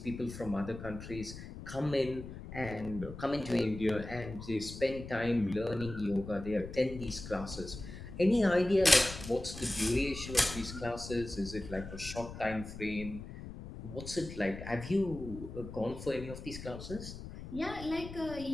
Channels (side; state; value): left; noise; rumble, 11 dB below the sound